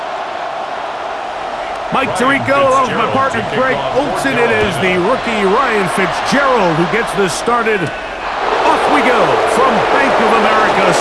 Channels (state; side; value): identical; both; correlation 1.00